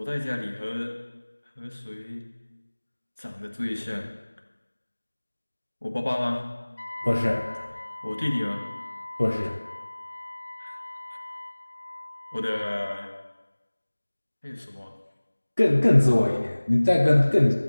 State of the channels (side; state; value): both; inverted; correlation -1.00